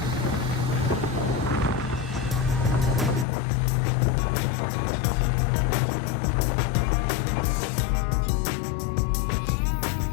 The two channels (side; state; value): right; drops out; at 3.2 s